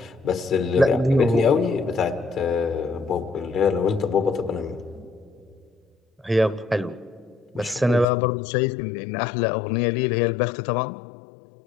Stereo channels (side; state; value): right; drops out; at 8.1 s